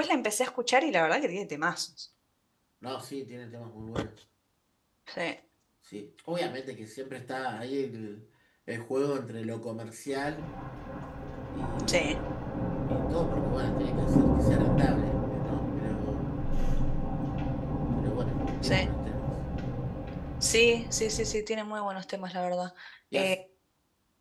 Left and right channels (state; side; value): identical; both; correlation 1.00